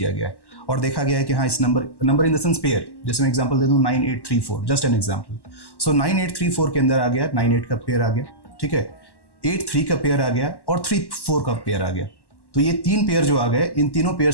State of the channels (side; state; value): right; late; 1.1 ms